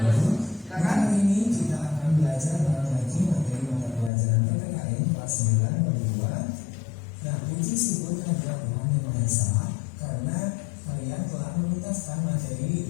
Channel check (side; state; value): right; drops out; at 4.1 s